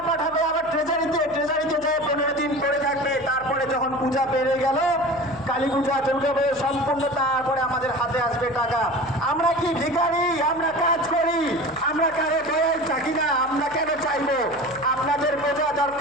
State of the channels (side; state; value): left; noise; hum, 24 dB below the sound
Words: পাঠাবে আবার ট্রেজারিতে, ট্রেজারিতে যেয়ে 15 দিন পরে থাকবে। তারপরে যখন পূজা পেরে গেল, কালী পূজা, দুর্গা পূজা সম্পূর্ণ, তারপরে আমাদের হাতে আসবে টাকা। আমরা কি ভিখারি? আমরা কাজ করি, আমরা কারো দয়ায় থাকি না। আমরা কেন চাইবো? আপনাদের বোঝা